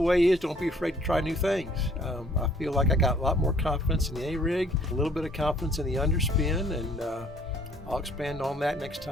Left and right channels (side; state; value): both; normal; correlation 0.59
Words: is don't be afraid to try new things. I feel like I got a lot more confidence in the A-rig, a little bit of confidence in the underspin, and I'll expand on that next